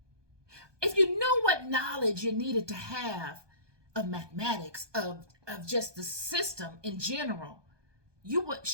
if you knew what knowledge you needed to have of mathematics, of just the system in general, you would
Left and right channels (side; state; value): left; late; 1.2 ms